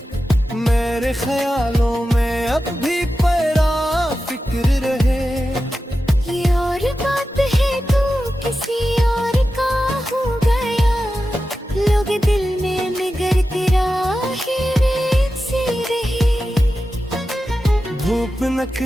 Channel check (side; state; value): both; normal; correlation 0.92